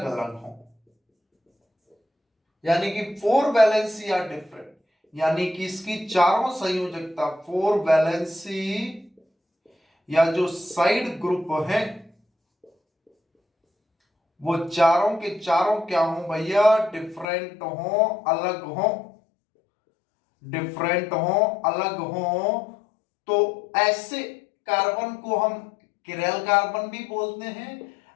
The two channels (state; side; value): drops out; right; at 17.2 s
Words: अलग हो। यानी कि 4 वैलेंसी आर डिफरेंट, यानी कि इसकी चारों संयोजकता 4 वैलेंसी या जो साइड ग्रुप है वो चारों के चारों क्या हो भैया, डिफरेंट हो, अलग हो, डिफरेंट हो, अलग हो। तो ऐसे कार्बन को हम किरेल कार्बन भी बोलते हैं,